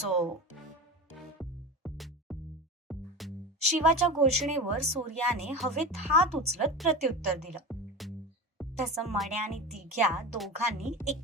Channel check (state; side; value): normal; both; correlation 0.27